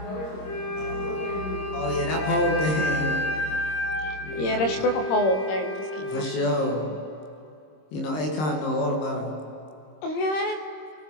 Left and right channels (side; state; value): right; late; 26 ms